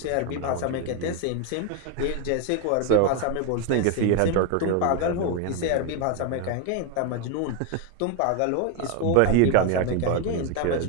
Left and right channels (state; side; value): different; both; correlation 0.01